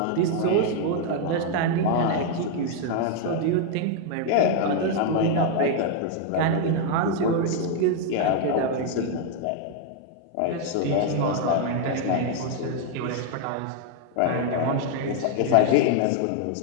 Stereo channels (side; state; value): both; different; correlation 0.00